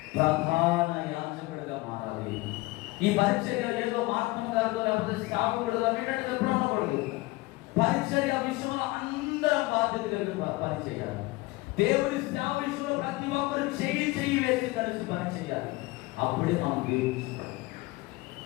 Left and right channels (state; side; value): quieter; right; 21.5 dB